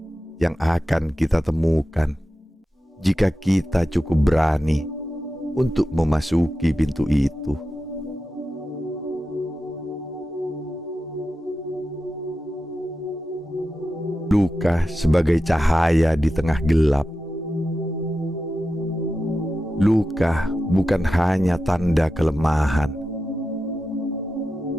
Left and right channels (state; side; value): normal; both; correlation 0.91